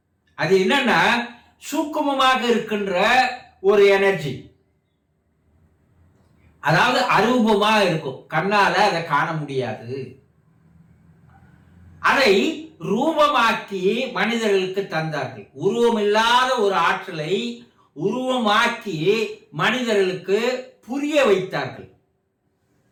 அது என்னன்னா, சூக்குமமாக இருக்கின்ற ஒரு எனர்ஜி, அதாவது அரூபமா இருக்கும், கண்ணால அதை காண முடியாது. அதை ரூபமாக்கி மனிதர்களுக்கு தந்தார்கள். உருவம் இல்லாத ஒரு ஆற்றலை உருவமாக்கி மனிதர்களுக்கு புரிய வைத்தார்கள்.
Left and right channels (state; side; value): identical; both; correlation 1.00